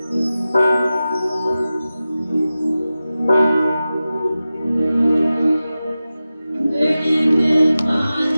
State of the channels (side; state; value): both; inverted; correlation -0.94